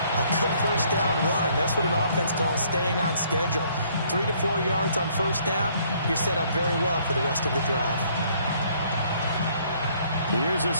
good 1st down run. That's what an offense calls staying on schedule. 3 to 4 yards on 1st down, you're set up very well for the rest of the drive. Here's a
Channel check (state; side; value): inverted; both; correlation -0.64